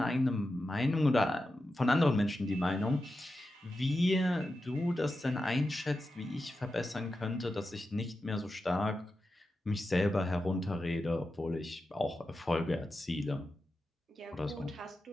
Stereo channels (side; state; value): both; normal; correlation 0.90